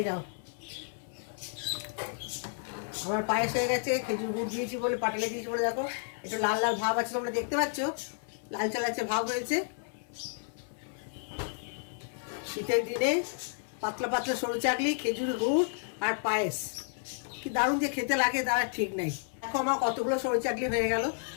যাও। আমার পায়েস হয়ে গেছে, খেজুর গুড় দিয়েছি বলে, পাটালে দিয়েছি বলে দেখো একটু লাল লাল ভাব আছে, তোমরা দেখতে পাচ্ছ, লালচে লালচে ভাব হয়েছে। শীতের দিনে পাতলা পাতলা সরু চাকলি, খেজুর গুড় আর পায়েস, কি দারুণ যে খেতে লাগে তার ঠিক নাই। দেখো আমার কতগুলো সরু চাকলি হয়ে গেল,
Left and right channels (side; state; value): right; silent; 57 dB below the other